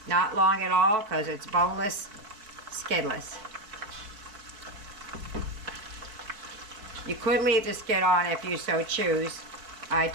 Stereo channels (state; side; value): late; left; 4.6 ms